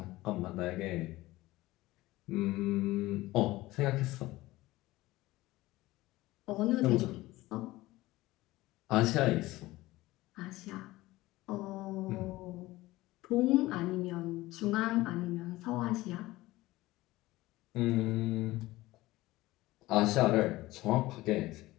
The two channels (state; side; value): quieter; right; 18.4 dB